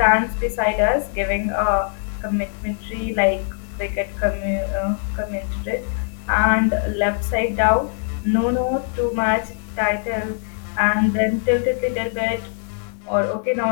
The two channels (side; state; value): right; silent; 55 dB below the other